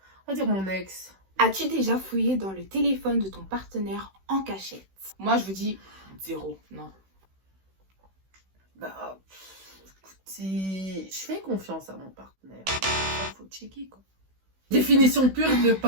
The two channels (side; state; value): left; late; 16 ms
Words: On va dire mon ex. As-tu déjà fouillé dans le téléphone de ton partenaire en cachette? Moi, je vous dis 0, non. Bah... Écoutez... Je fais confiance à mon partenaire. Faut checker, quoi. Définition pure de